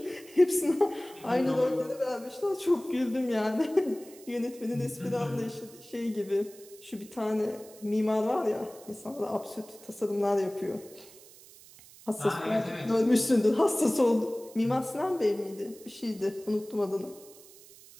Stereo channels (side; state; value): right; noise; hiss, 21 dB below the sound